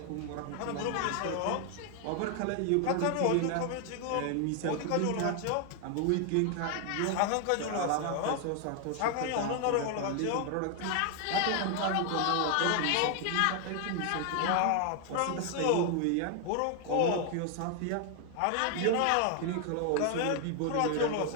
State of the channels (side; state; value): both; different; correlation 0.00